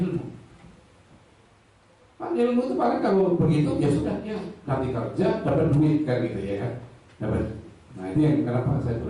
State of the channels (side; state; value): both; identical; correlation 1.00